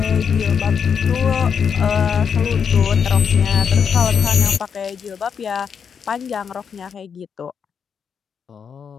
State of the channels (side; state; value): right; quieter; 6.8 dB